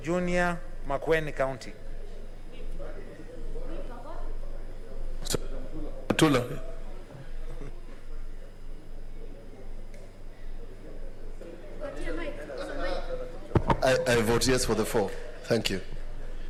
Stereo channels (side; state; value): both; identical; correlation 1.00